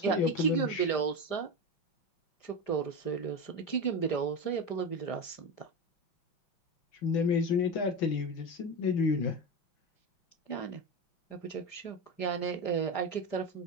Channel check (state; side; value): late; right; 5.0 ms